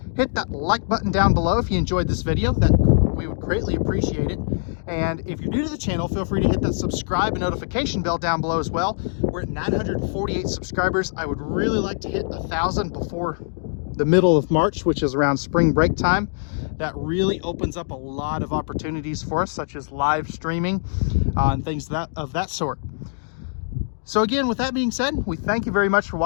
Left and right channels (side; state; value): right; silent; digital silence